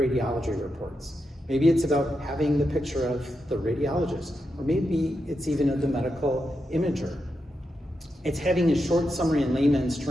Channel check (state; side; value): normal; both; correlation 0.86